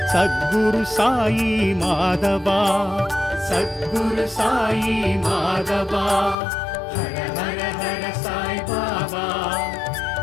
சத்குரு சாயி மாதவா, சத்குரு சாயி மாதவா. ஹர ஹர ஹர சாய் பாபா,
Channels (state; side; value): drops out; right; at 6.4 s